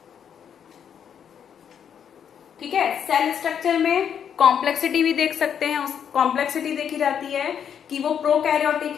ठीक है। सेल स्ट्रक्चर में कॉम्प्लेक्सिटी भी देख सकते हैं, उस कॉम्प्लेक्सिटी देखी जाती है कि वो प्रोकैरियोटिक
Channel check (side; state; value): right; quieter; 8.3 dB